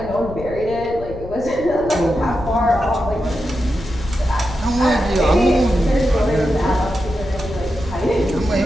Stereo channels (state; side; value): noise; left; rumble, 12 dB below the sound